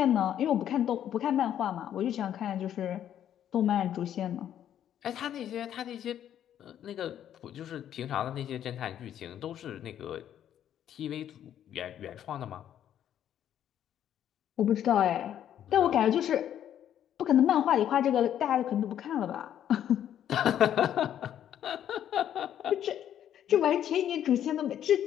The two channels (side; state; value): right; quieter; 10.4 dB